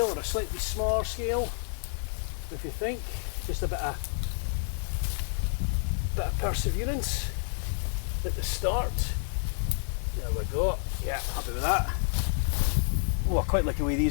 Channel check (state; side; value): silent; right; digital silence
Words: or a slightly smaller scale. If you think, just a bit of perseverance at the start. There we go. Yeah, happy with that. Oh, I quite like the way